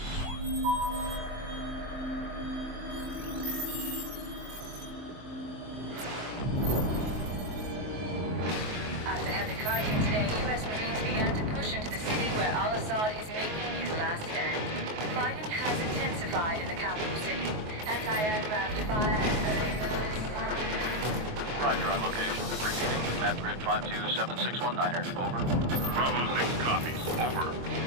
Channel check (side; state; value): left; late; 23 ms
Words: After heavy fighting today, U.S. Marines began to push into the city where al-Assad is making his last stand. Fighting has intensified in the capital city. Anti-aircraft fire and Roger on location. Repeating, map grid 527619er. Over. Bravo 6 copies. Over.